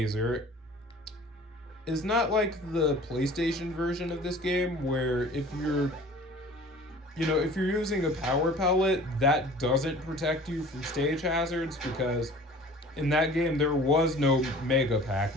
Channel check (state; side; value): normal; both; correlation 0.46